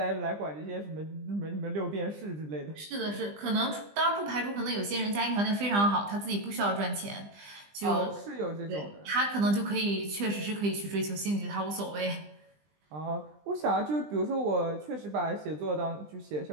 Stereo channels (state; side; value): late; left; 20 ms